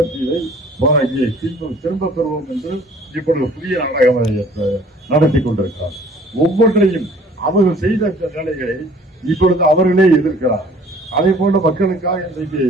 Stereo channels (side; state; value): both; normal; correlation 0.53